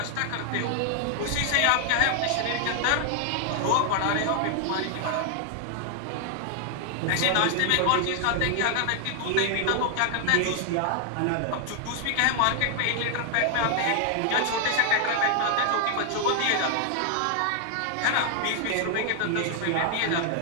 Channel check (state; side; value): different; both; correlation 0.00